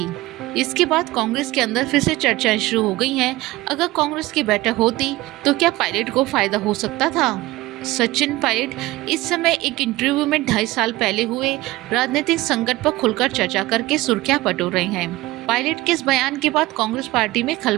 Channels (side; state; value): left; quieter; 18.7 dB